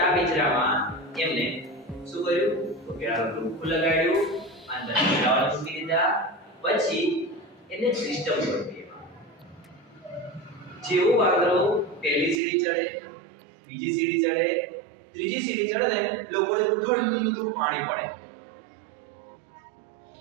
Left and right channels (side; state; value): left; drops out; at 12.4 s